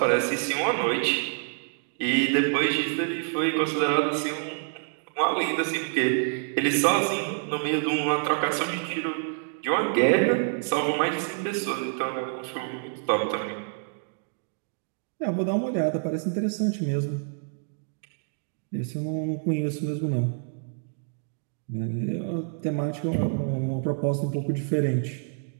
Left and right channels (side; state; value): left; silent; 60 dB below the other